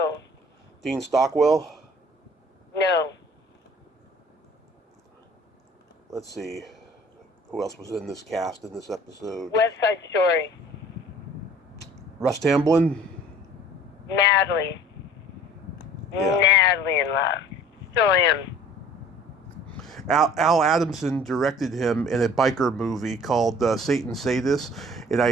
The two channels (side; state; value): both; normal; correlation 0.49